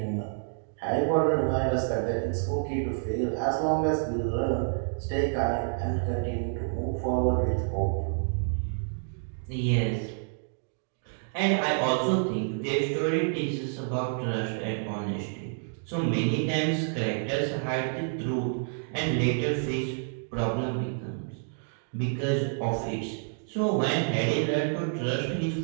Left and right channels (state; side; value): silent; left; digital silence